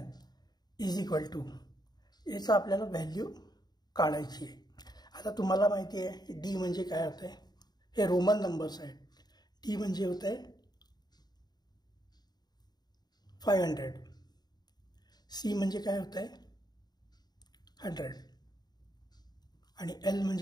is equal to, याचा आपल्याला व्हॅल्यू काढायची आहे। आता तुम्हाला माहिती आहे डी म्हणजे काय होते, हे रोमन नंबर्स आहेत। डी म्हणजे होते 500, सी म्हणजे काय होते 100 आणि एल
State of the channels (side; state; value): right; late; 0.20 ms